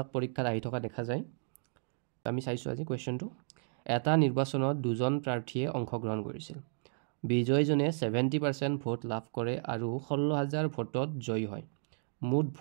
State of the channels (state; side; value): silent; left; digital silence